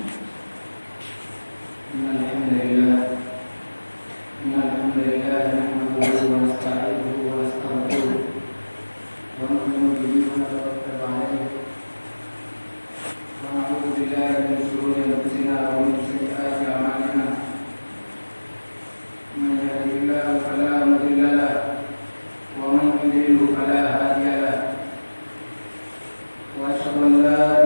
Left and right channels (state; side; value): inverted; both; correlation -1.00